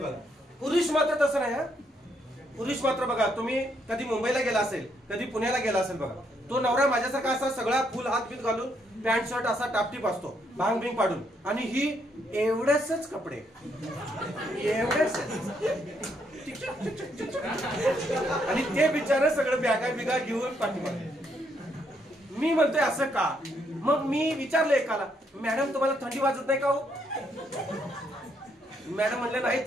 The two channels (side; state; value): both; normal; correlation 0.74